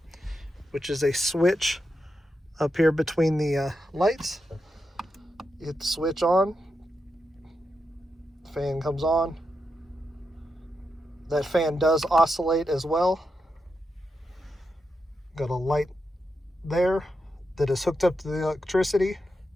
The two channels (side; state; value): both; normal; correlation 0.86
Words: which is a switch up here between the lights. You hit the switch on, the fan comes on. That fan does oscillate as well. Got a light there that is hooked up to the electricity.